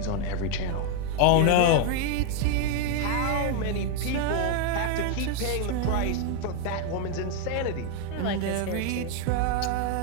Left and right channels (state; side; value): different; both; correlation 0.01